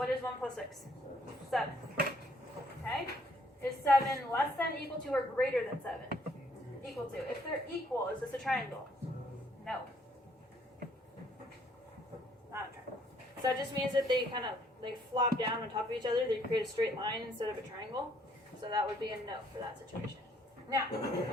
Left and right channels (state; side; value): normal; both; correlation 0.65